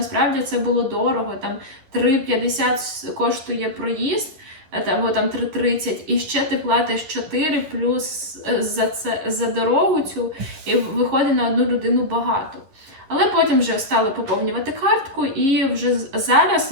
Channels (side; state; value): left; late; 11 ms